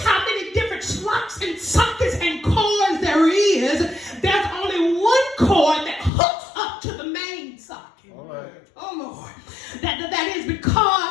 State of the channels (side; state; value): right; drops out; at 6.1 s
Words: many different slots and sockets and cords there is, there's only one cord that hooks up to the main socket. All right. Oh, Lord. That is